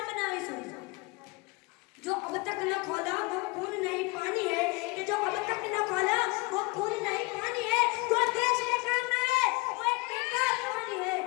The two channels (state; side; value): quieter; right; 26.9 dB